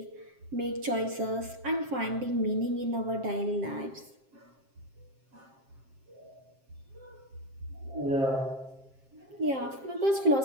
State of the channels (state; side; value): late; left; 7.5 ms